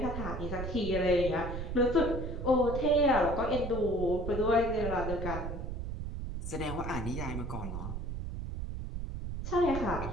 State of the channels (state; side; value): noise; right; rumble, 5 dB below the sound